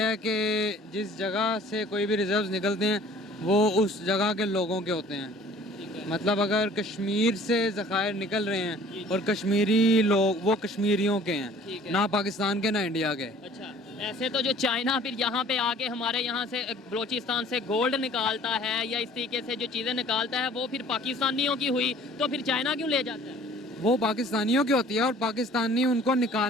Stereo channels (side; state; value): both; normal; correlation 0.51